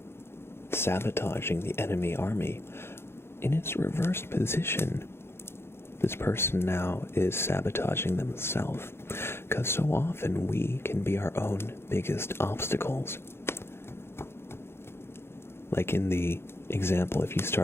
sabotaging the enemy army, in its reversed position, this person now is sabotaging themselves, because so often we can be our own biggest obstacles. Like in the example, if you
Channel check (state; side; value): late; right; 0.12 ms